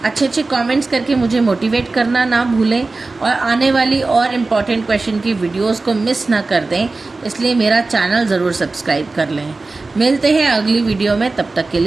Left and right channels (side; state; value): left; quieter; 3.5 dB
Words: अच्छे कमेंट्स करके मुझे मोटिवेट करना ना भूलें, और आने वाली और इम्पॉर्टेंट क्वेश्चन की वीडियोस को मिस ना कर दें, इसलिए मेरा चैनल ज़रूर सब्सक्राइब कर लें. मिलते हैं अगली वीडियो में, तब तक के